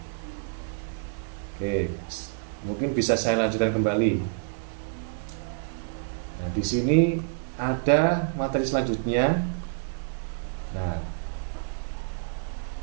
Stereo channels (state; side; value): silent; left; digital silence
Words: Oke, mungkin bisa saya lanjutkan kembali. Nah, di sini ada materi selanjutnya. Nah,